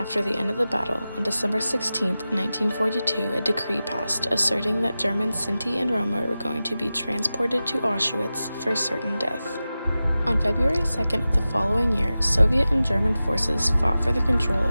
the end of the battle, on December 16, 1942, a decree passed asserting that German Sinti and Roma were going to be transported to Auschwitz for certain death. On February 2nd of the following year, Soviet and German forces fought for the control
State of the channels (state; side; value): inverted; both; correlation -0.95